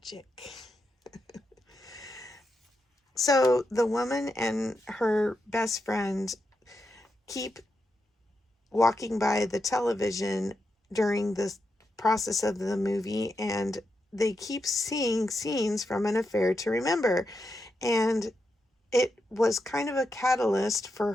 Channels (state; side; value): normal; both; correlation 0.86